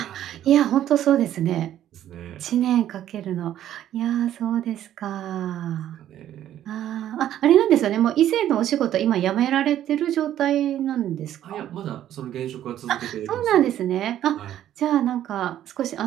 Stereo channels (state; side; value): quieter; left; 11.7 dB